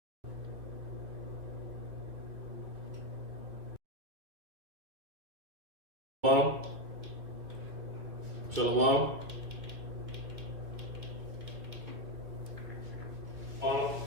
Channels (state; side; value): late; left; 2.3 ms